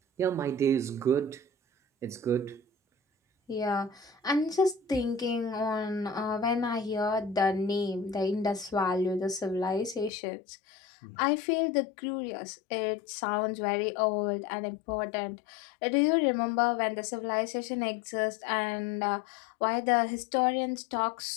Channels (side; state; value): right; drops out; at 10.1 s